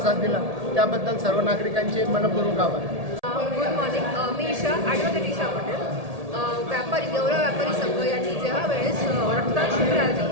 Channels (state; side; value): late; left; 1.8 ms